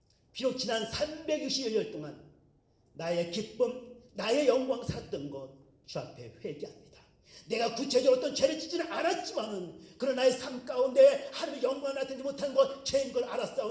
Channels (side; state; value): both; identical; correlation 1.00